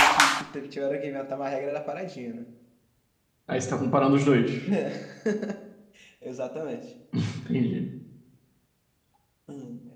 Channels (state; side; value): identical; both; correlation 1.00